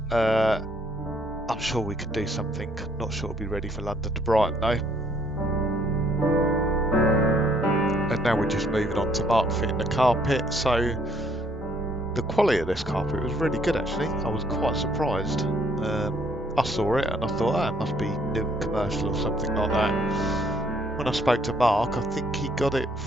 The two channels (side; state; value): both; normal; correlation 0.65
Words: I'm sure we could do something. Not sure it'll be ready for London to Brighton though. And now we're just moving on to Mark fitting the carpet. So the quality of this carpet was really good actually. I was quite surprised. I saw it and I thought, oh, it must be new and commercial or something like that. When I spoke to Mark, I think he got it